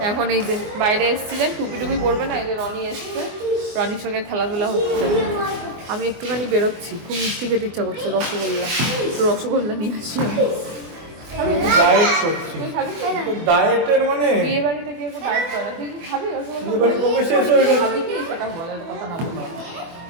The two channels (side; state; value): left; late; 24 ms